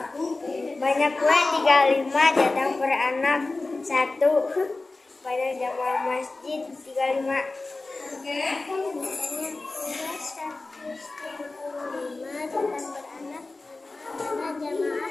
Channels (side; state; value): right; quieter; 3.3 dB